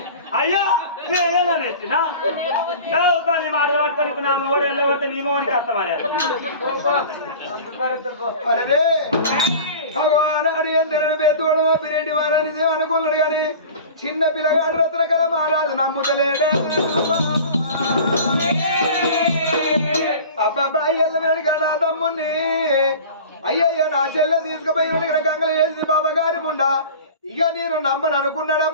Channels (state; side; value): inverted; both; correlation -0.39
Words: అయ్యో నేనేనా నేర్చినా నీ మాటలు పట్టుకొని నా మొగడు వెళ్ళబోతే నీ మొగడికి అర్థమయ్యా భగవాన్ అడిగిన పెద్దోడు పిరెడ్డి వారని అనుకున్నాడు కానీ చిన్న పిల్లగాడు రత్న కల మహారాజు నమ్ముతలేడా అబ్బాయి వెళ్ళినాడు నా తమ్ముని అయ్యయ్యో నా చెల్లె తీసుకుపోయి ఇక్కడ గంగలు వేసింది బాబా గారి ముండా ఇక నేను నమ్మను